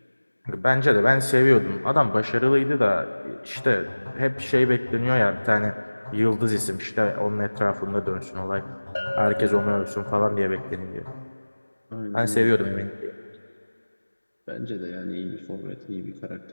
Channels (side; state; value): both; inverted; correlation -1.00